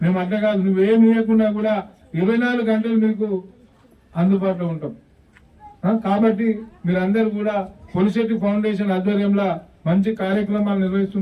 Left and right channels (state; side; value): identical; both; correlation 1.00